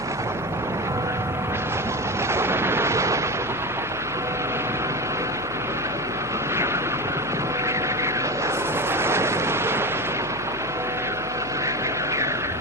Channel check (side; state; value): left; noise; hum, 18 dB below the sound